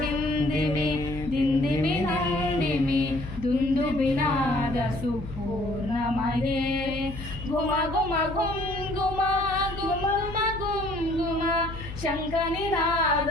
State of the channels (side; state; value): left; noise; hum, 11 dB below the sound